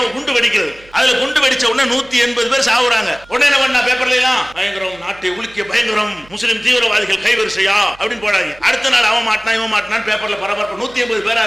குண்டு வெடிக்கிறது. அதுல குண்டு வெடிச்ச உடனே 180 பேர் சாவுறாங்க. உடனே என்ன பண்ணா? பேப்பர்ல எல்லாம் பயங்கரம், நாட்டை உலுக்கிய பயங்கரம், முஸ்லிம் தீவிரவாதிகள் கைவரிசையா அப்படின்னு போடாங்க. அடுத்த நாள் அவன் மாட்டினா இவன் மாட்டினான்னு பேப்பர்ல பரபரப்பு. 180 பேரா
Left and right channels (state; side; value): noise; right; hum, 25 dB below the sound